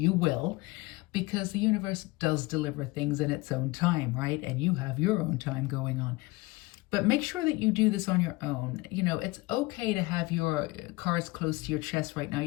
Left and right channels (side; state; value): right; quieter; 22.1 dB